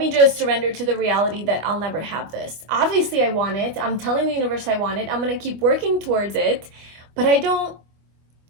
just surrender to the reality that I'll never have this. Obviously I want it. I'm telling the universe I want it. I'm going to keep working towards it, but I don't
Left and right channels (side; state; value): left; late; 25 ms